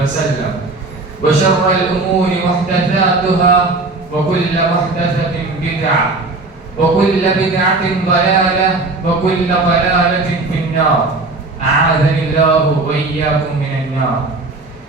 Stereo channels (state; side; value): quieter; left; 3.3 dB